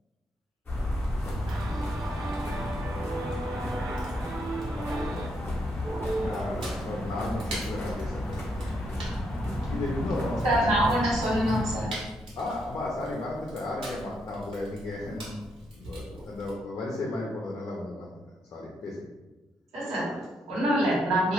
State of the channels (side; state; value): both; normal; correlation 0.77